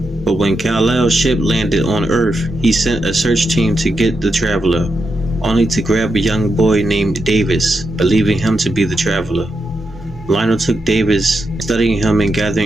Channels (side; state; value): both; normal; correlation 0.85